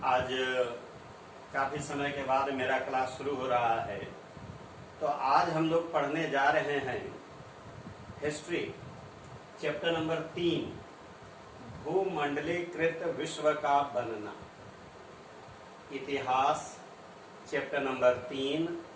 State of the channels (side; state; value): both; identical; correlation 1.00